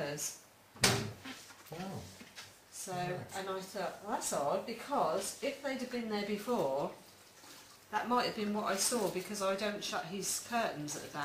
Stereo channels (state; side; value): identical; both; correlation 1.00